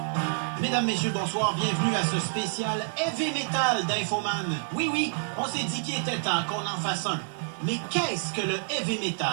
Mesdames, messieurs, bonsoir. Bienvenue à ce spécial Heavy Metal d'Infoman. Oui, on s'est dit qu'il était temps qu'on en fasse un. Mais qu'est-ce que le Heavy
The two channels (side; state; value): left; silent; digital silence